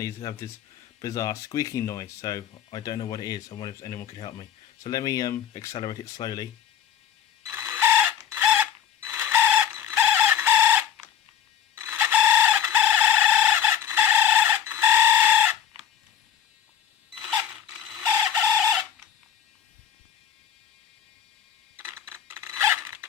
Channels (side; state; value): right; quieter; 9.1 dB